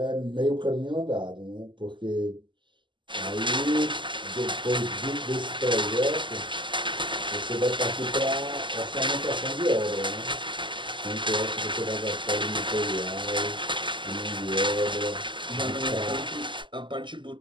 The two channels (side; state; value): left; late; 0.24 ms